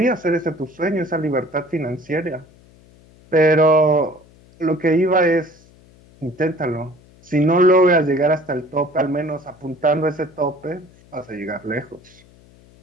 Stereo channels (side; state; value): left; noise; hum, 27 dB below the sound